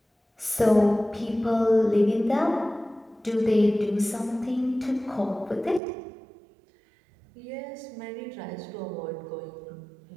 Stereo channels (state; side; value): drops out; left; at 5.8 s